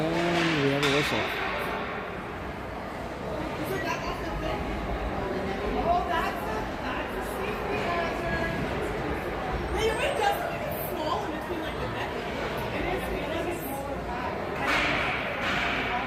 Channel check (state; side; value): identical; both; correlation 1.00